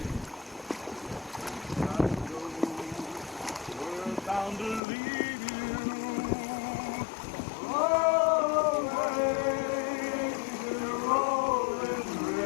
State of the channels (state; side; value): drops out; right; at 4.8 s